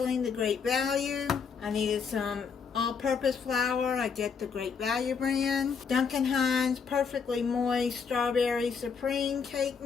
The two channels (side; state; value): right; quieter; 6.0 dB